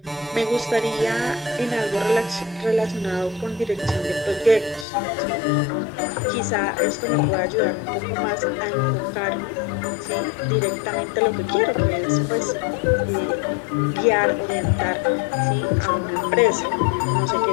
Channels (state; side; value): drops out; right; at 4.9 s